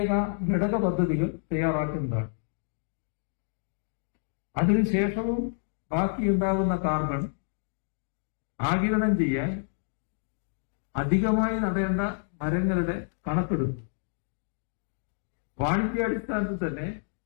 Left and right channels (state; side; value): silent; right; digital silence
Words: ഘടക പദ്ധതികൾ തയ്യാറാക്കുന്നതാണ്. അതിനുശേഷവും ബാക്കിയുണ്ടാകുന്ന കാർബൺ ആഗിരണം ചെയ്യാൻ അധികമായി നടേണ്ട മരങ്ങളുടെ കണക്കെടുത്തു. വാണിജ്യാടിസ്ഥാനത്തിൽ തന്നെ